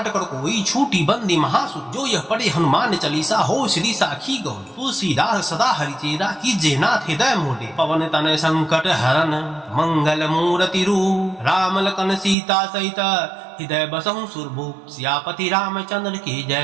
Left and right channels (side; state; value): left; drops out; at 12.4 s